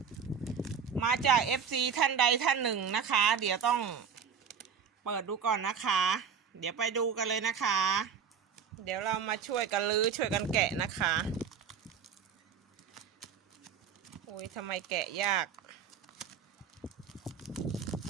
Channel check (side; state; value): left; quieter; 7.0 dB